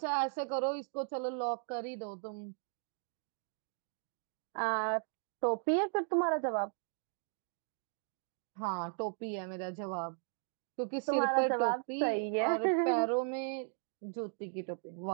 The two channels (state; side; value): silent; left; 53 dB below the other